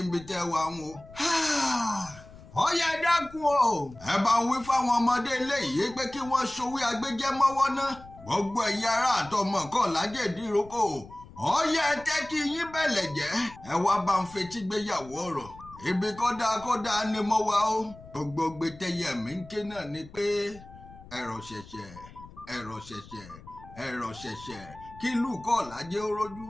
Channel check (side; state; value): left; noise; rumble, 19 dB below the sound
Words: níbi tẹ́ wà ń o. Ọ̀yá dákun o. Ẹ bá ń wí fáwọn ọmọdé ilé yìí pé kí wọ́n ṣòwé agbẹ́jẹ́ mọ́wọ́ ná. Gbogbo ẹ̀yin ará àtọmọ Kọ́làjẹ́ Ìdíròkò. Ọ̀yá ẹ tẹ́ kí yín bẹ̀lẹ̀ jẹ́. Ẹ wá bá ń fetí gbéyàwó ọ̀rọ̀. Ibi kódà ni mo wà o. Gbogbo gbẹtẹyẹ mi ń ké náà ni pé ẹ̀rọ ṣẹ̀ṣẹ̀ kí ìlú Kọ́làjẹ́ ó rójú